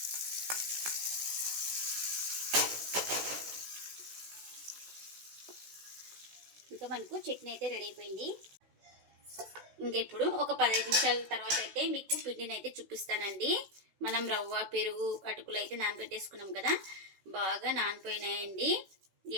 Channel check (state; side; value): late; left; 16 ms